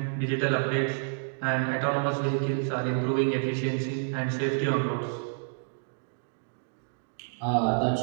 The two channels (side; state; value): left; silent; digital silence